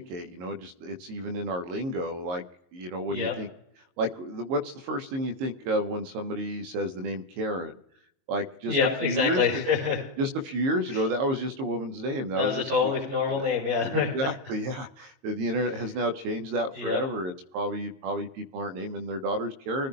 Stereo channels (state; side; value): late; left; 22 ms